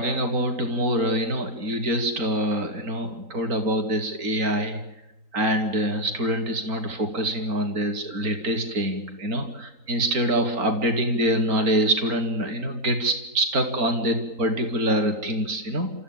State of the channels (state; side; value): late; left; 3.9 ms